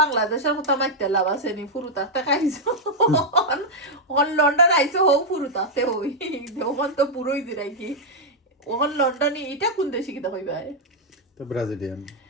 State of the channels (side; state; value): both; normal; correlation -0.03